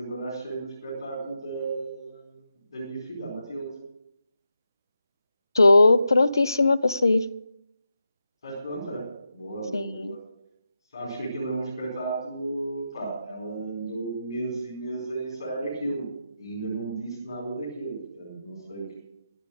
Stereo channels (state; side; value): inverted; both; correlation -0.88